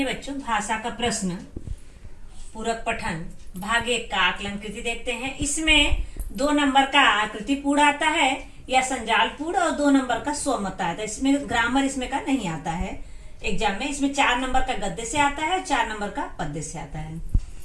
बच्चों, भाषा का प्रश्न पूरक पठन भाग 1 का आकलन कृति देखते हैं। इसमें 2 नंबर का आकृति पूर्ण आता है या संजाल पूर्ण, और 2 नंबर का स्वमत आता है। इसमें ग्रामर इसमें का नहीं आता है एग्जाम में। इसमें 4 नंबर का गद्य से आता है, 4 नंबर का पद्य से आता है,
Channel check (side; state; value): both; identical; correlation 1.00